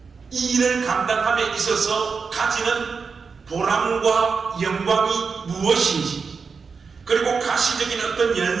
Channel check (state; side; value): quieter; left; 5.2 dB